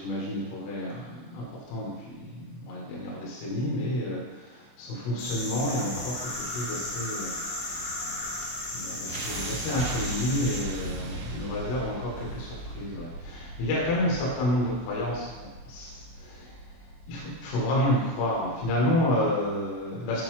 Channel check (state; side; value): late; right; 24 ms